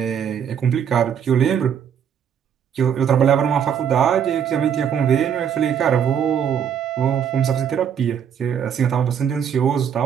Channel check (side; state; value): left; quieter; 8.2 dB